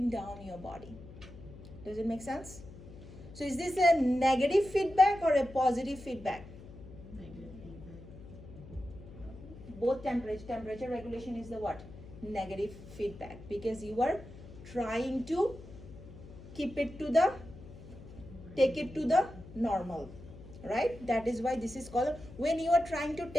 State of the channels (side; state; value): left; noise; hum, 16 dB below the sound